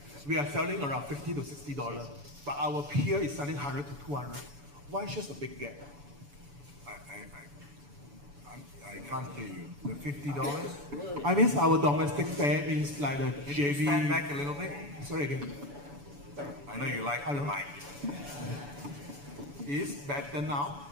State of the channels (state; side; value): late; left; 7.0 ms